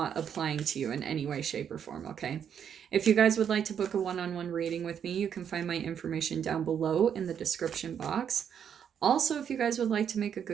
applying to you in any way, shape, or form, okay? If you guys would like to book a one-on-one reading with me, you can find my information down below in the description box. Also, if you guys would like to make a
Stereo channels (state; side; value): quieter; left; 8.3 dB